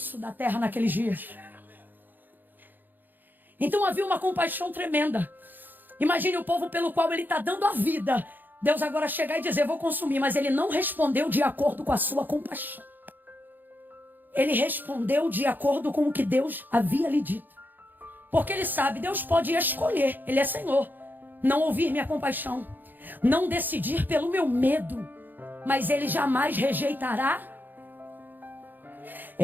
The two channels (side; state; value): left; late; 0.088 ms